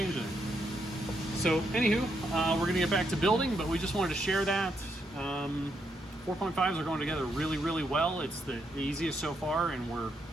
it. So anywho, we're gonna get back to building, but we just wanted to share that. 4.5s are going together really, really well. It's the easiest so far, and we're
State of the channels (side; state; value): both; normal; correlation 0.78